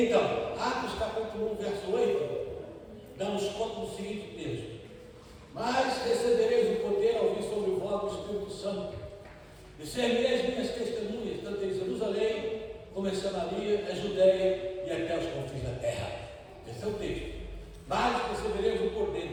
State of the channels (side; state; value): both; identical; correlation 1.00